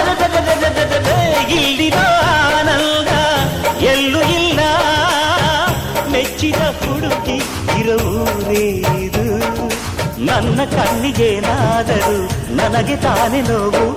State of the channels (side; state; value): both; identical; correlation 1.00